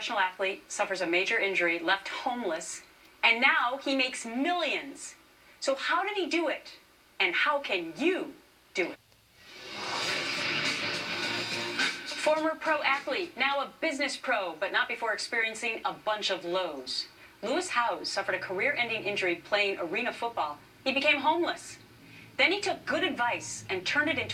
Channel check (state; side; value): identical; both; correlation 1.00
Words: athlete, suffers a major injury, left homeless, and now he makes millions. So how did he do it? And how can you do it? Former pro athlete, now a business pro, but not before experiencing a bunch of lows. Lewis Howes suffered a career-ending injury playing arena football. He became homeless. Then he took good advice and turned it